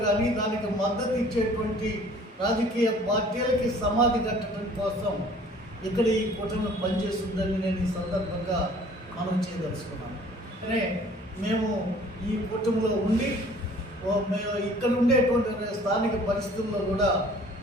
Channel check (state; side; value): normal; both; correlation 0.52